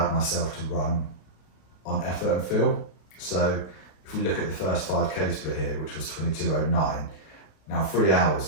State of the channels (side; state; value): right; late; 32 ms